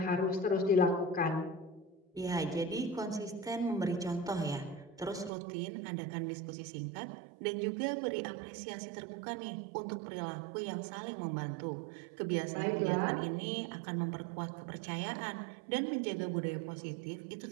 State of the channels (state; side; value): drops out; left; at 5.3 s